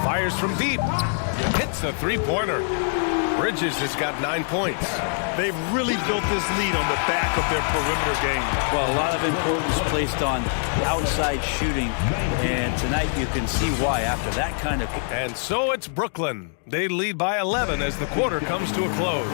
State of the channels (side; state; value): right; silent; 59 dB below the other